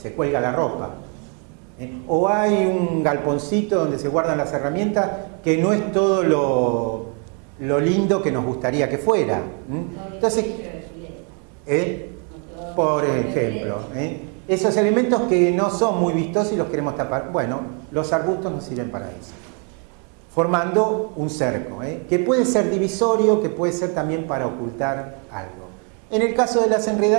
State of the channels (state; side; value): quieter; left; 38.9 dB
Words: cuelga la ropa. O hay un galponcito donde se guardan las herramientas que no es todo lo lindo que nos gustaría que fuera. Entonces, por ejemplo, esos elementos que no son muy vistosos y los queremos tapar, bueno, los arbustos nos sirven para eso, formando un cerco, que puede ser divisorio, que puede ser también para ocultar algo. En el caso de las